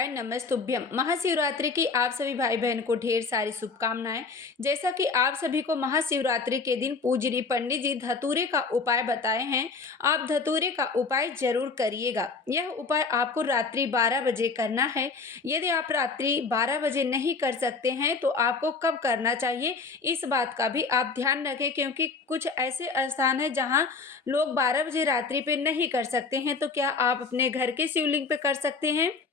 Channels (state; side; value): quieter; right; 4.5 dB